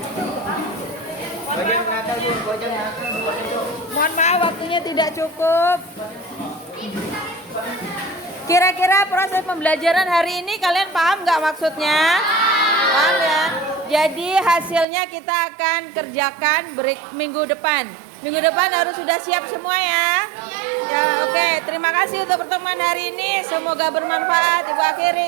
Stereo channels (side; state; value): left; drops out; at 14.9 s